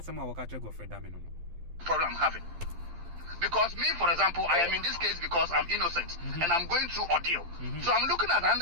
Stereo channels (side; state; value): left; late; 12 ms